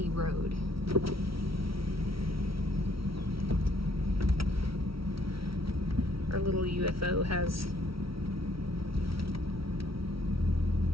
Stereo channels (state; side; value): late; left; 0.75 ms